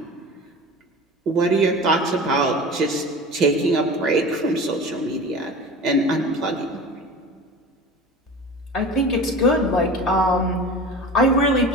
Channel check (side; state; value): both; normal; correlation 0.34